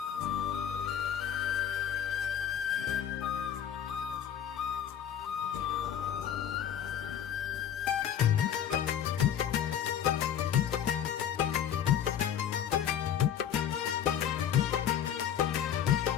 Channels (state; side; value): quieter; right; 9.4 dB